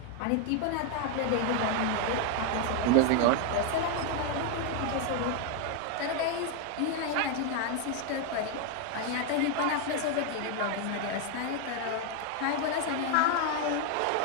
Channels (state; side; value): different; both; correlation 0.01